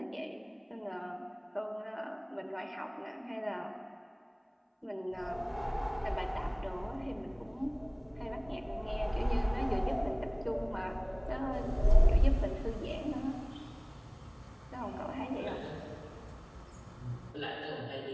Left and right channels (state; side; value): identical; both; correlation 1.00